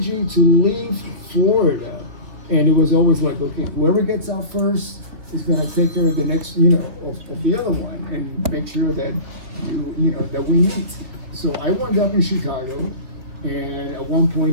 to leave Florida, and it was always like, okay, whoever gets out first is going to take care of the next, of the other one, and make sure that that we meet. So I wound up in Chicago, and at one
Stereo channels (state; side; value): late; left; 3.3 ms